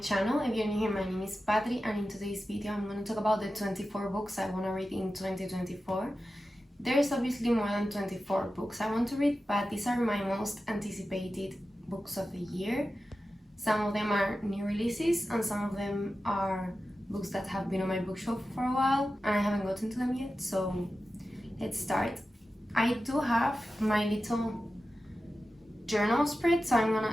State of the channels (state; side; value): normal; both; correlation 0.93